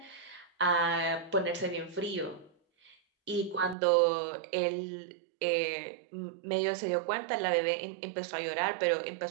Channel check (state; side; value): drops out; left; at 3.8 s